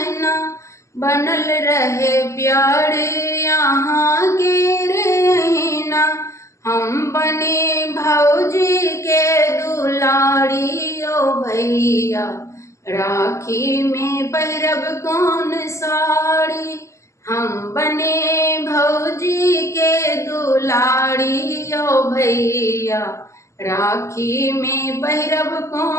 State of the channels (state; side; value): late; right; 0.14 ms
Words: बनल रहे प्यार यहाँ के रहीना। हम बने भौजी के दुलारी ओ भैया, राखी में पहिरब कौन साड़ी, हम बने भौजी के दुलारी ओ भैया, राखी में पहिरब